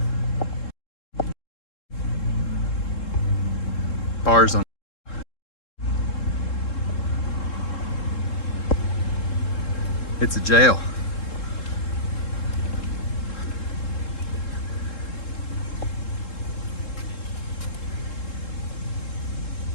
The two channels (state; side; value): late; right; 3.7 ms